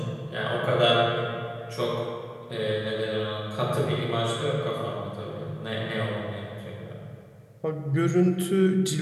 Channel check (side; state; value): both; identical; correlation 1.00